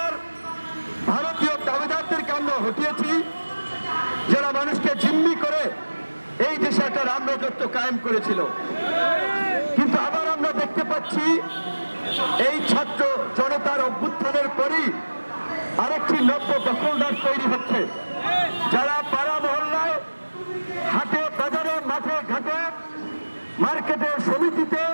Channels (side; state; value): both; inverted; correlation -1.00